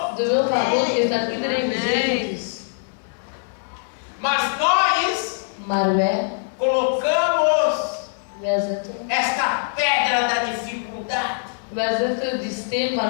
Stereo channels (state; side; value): silent; right; digital silence